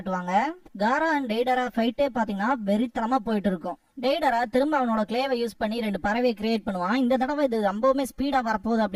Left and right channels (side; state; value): both; identical; correlation 1.00